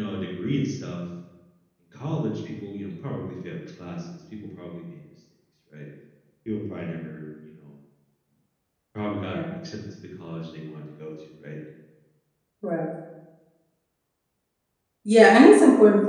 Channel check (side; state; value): both; identical; correlation 1.00